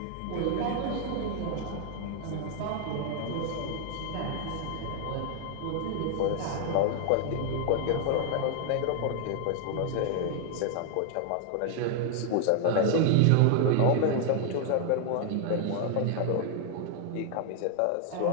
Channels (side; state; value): both; different; correlation 0.00